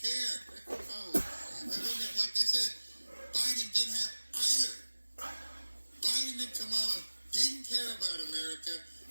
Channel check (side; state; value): both; inverted; correlation -1.00